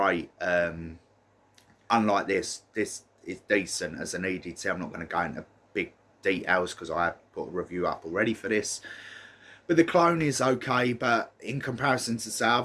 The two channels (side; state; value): both; identical; correlation 1.00